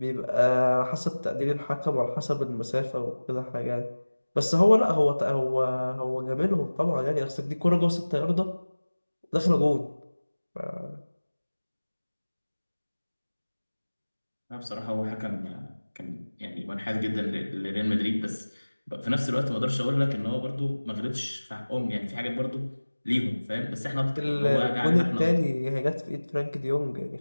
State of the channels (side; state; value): both; inverted; correlation -1.00